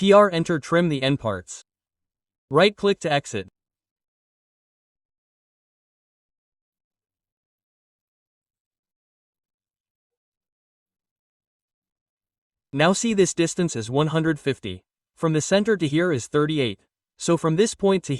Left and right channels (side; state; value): both; identical; correlation 1.00